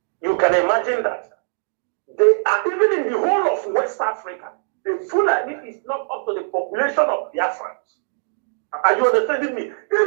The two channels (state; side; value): silent; left; digital silence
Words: You can imagine that. They are even in the whole of West Africa. The Fulani is not up to the population of Biafrans. Are you understanding me?